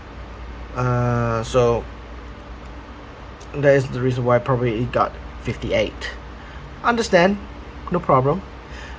So that is the reason why probably it got 58. Understand, no problem.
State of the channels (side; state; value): both; identical; correlation 1.00